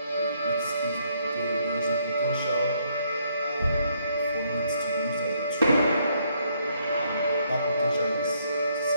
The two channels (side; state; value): both; inverted; correlation -0.70